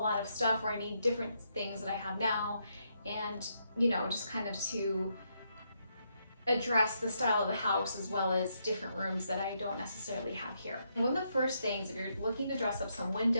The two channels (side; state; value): both; inverted; correlation -0.78